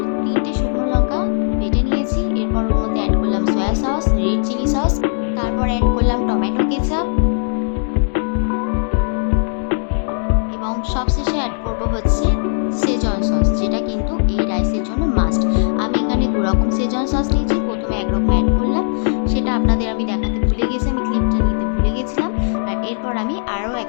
3টে শুকনো লঙ্কা বেটে নিয়েছি। এরপর ওর মধ্যে অ্যাড করলাম soya sauce, red chilli sauce, তারপর অ্যাড করলাম টমেটো কেচাপ, এবং সবশেষে অ্যাড করব হচ্ছে সেজওয়ান সস, যেটা কিন্তু এই রাইসের জন্য মাস্ট। আমি এখানে 2 রকম সেজওয়ান সস নিয়েছি। প্রথমে একরকম অ্যাড করলাম, সেটা আপনাদের আমি দেখাতে ভুলে গেছি, আমি ক্লিপটা নিতে ভুলে গেছিলাম। আর এরপর আমি আরও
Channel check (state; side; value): silent; right; digital silence